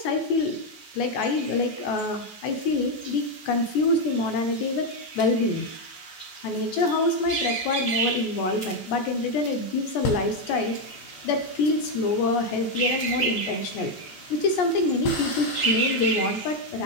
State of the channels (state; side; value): late; right; 14 ms